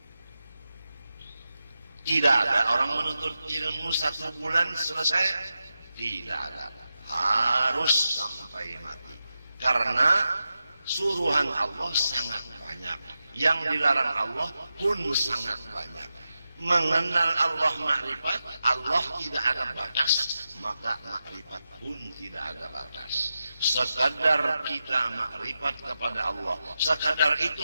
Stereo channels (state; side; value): inverted; both; correlation -0.90